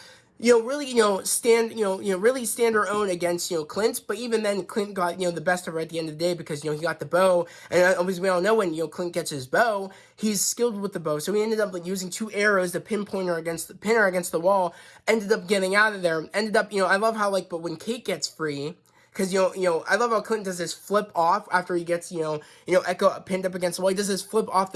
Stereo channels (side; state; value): both; identical; correlation 1.00